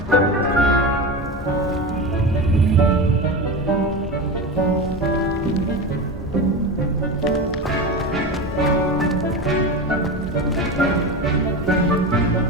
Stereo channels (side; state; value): both; normal; correlation 0.24